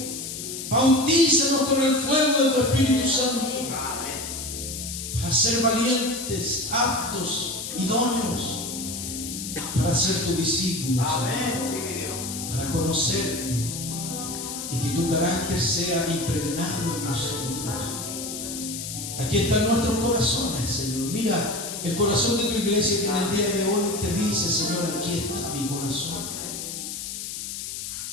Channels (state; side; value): noise; left; hiss, 7 dB below the sound